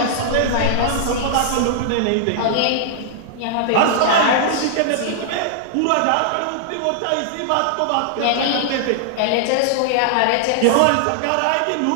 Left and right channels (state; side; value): different; both; correlation -0.01